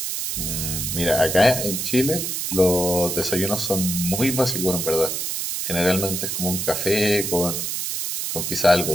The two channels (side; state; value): right; noise; hiss, 2 dB below the sound